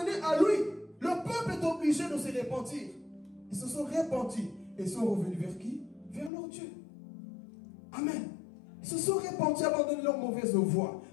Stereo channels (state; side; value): drops out; right; at 6.3 s